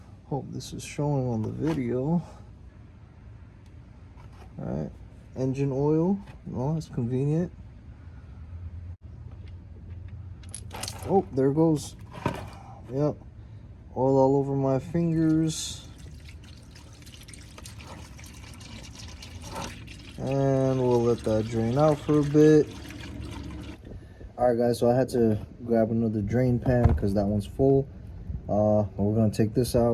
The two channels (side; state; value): both; identical; correlation 1.00